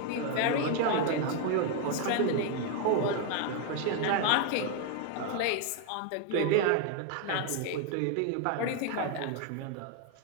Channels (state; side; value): different; both; correlation 0.01